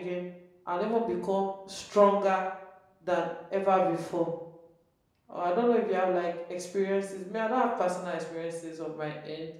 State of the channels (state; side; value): identical; both; correlation 1.00